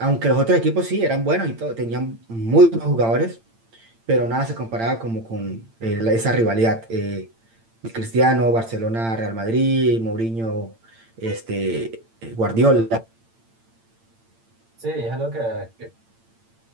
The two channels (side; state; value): left; late; 8.8 ms